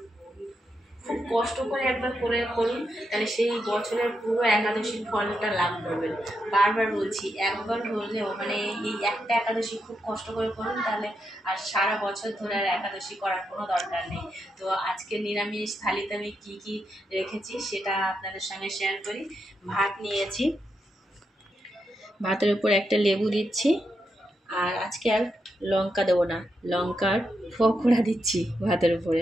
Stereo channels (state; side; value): normal; both; correlation 0.84